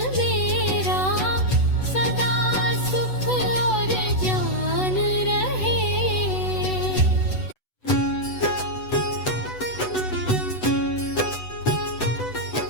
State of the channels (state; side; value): late; right; 8.0 ms